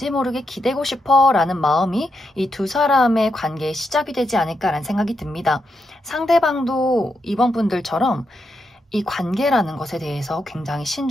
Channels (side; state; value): both; normal; correlation 0.83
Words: 모르게 기대고 싶어 라는 마음이 이 두 사람의 관계의 시작이 되지 않을까라는 생각이 듭니다. 상대방도 이번 분들처럼 이 관계라는 것에 대해서 굉장히